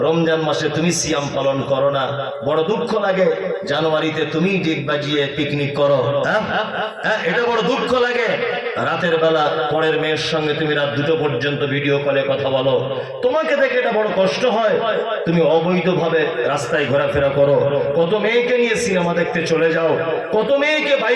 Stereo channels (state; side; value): identical; both; correlation 1.00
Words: রমজান মাসে তুমি সিয়াম পালন করো না, বড় দুঃখ লাগে জানুয়ারিতে তুমি ডিগ বাজিয়ে পিকনিক করো, হ্যাঁ এটা বড় দুঃখ লাগে। রাতের বেলা পরের মেয়ের সঙ্গে তুমি রাত 2টো পর্যন্ত ভিডিও কলে কথা বলো, তোমাকে দেখে এটা বড় কষ্ট হয়। তুমি অবৈধভাবে রাস্তায় ঘোরাফেরা করো, কত মেয়েকে নিয়ে সিনেমা দেখতে চলে যাও, কত মেয়েকে